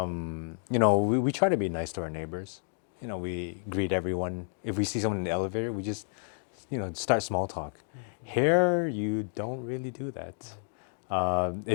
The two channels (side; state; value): right; silent; 57 dB below the other